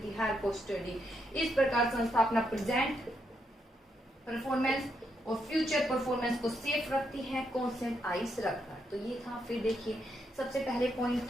the help of study. इस प्रकार संस्था अपना प्रेजेंट परफॉर्मेंस और फ्यूचर परफॉर्मेंस को सेफ रखती है कांस्टेंट आइज रखकर। तो ये था। फिर देखिए, सबसे पहले पॉइंट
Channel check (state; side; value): normal; both; correlation 0.79